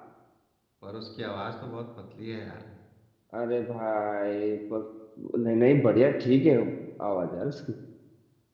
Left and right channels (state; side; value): identical; both; correlation 1.00